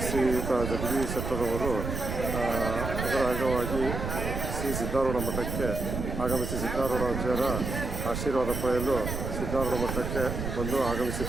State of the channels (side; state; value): right; noise; rumble, 4 dB below the sound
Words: ಶ್ರೀಯುತ ಜಗದೀಶ್ ಶೆಟ್ಟರ್ ಅವರು ಅದರ ಅಂಗವಾಗಿ ಶ್ರೀ ಸಿದ್ಧಾರೂಢ ಮಠಕ್ಕೆ ಆಗಮಿಸಿ ಸಿದ್ಧಾರೂಢಾಚಾರ್ಯರ ಆಶೀರ್ವಾದ ಪಡೆಯಲು ಸಿದ್ಧಾರೂಢ ಮಠಕ್ಕೆ ಬಂದು